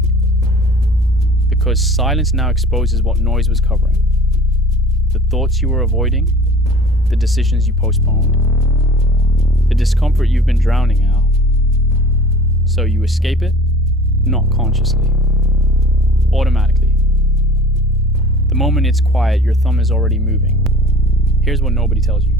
Because silence now exposes what noise was covering. The thoughts you were avoiding, the decisions you postponed, the discomfort you've been drowning out. So you escape it, not consciously, automatically. The moment it's quiet, your thumb is already moving. Here's what nobody tells you.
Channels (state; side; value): normal; both; correlation 0.44